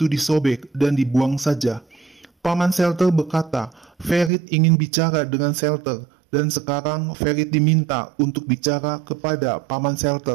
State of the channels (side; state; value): left; drops out; at 4.3 s